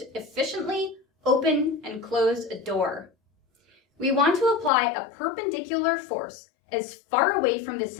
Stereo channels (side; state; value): right; drops out; at 4.7 s